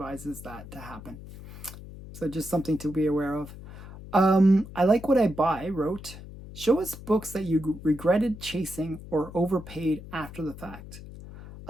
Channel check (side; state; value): left; noise; hum, 14 dB below the sound